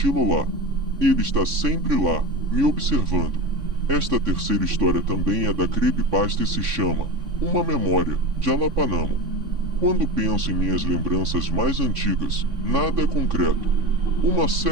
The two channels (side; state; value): left; late; 3.5 ms